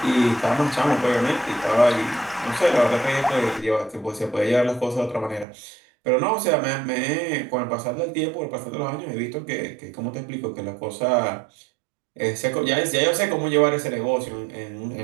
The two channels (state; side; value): drops out; left; at 5.5 s